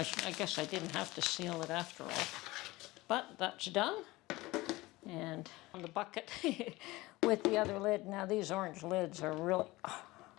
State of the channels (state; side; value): quieter; right; 20.2 dB